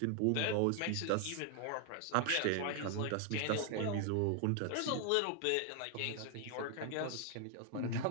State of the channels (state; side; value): different; both; correlation 0.00